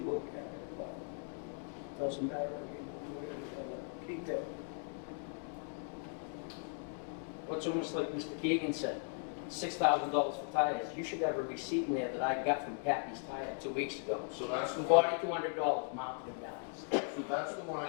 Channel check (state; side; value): silent; right; 52 dB below the other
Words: at it, but doesn't matter, we're gonna keep it. What's almost like Mr. Keegan said, $6,000 for tires. You should have a receipt in there that I got from Kathy's Tire 2 weeks ago. So that's the one, $4,200 mounted him down. so that's the one